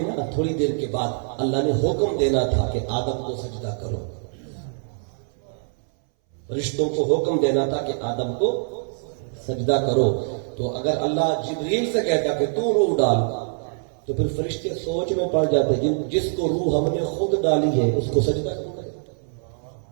نا تھوڑی دیر کے بعد اللہ نے حکم دینا تھا کہ آدم کو سجدہ کرو. رشتوں کو حکم دینا تھا کہ آدم کو سجدہ کرو. تو اگر اللہ جبریل سے کہتا کہ تو روح ڈال, تو پھر فرشتے سوچ میں پڑ جاتے, جس کو روح ہم نے خود ڈالی ہے اس کو سجدہ کرو.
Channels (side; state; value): left; silent; 62 dB below the other